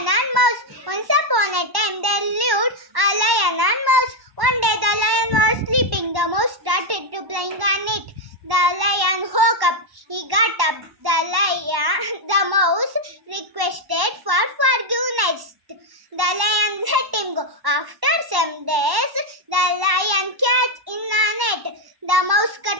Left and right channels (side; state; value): left; late; 1.1 ms